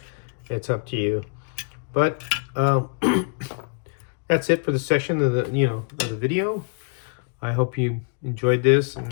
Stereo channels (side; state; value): right; quieter; 38.6 dB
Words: it's up to you. But that's it for the section of the video. I hope you enjoyed this,